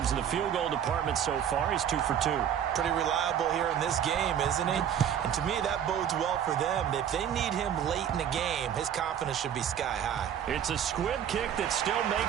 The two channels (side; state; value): left; quieter; 9.3 dB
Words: in the field goal department so far. He's 2 for 2. Pretty reliable here in this game, isn't he? And to me, that bodes well for them. If they need him late in the game, his confidence should be sky high. It's a squib kick that still